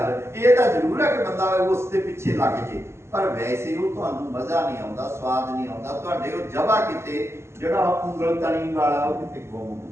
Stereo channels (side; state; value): left; late; 0.13 ms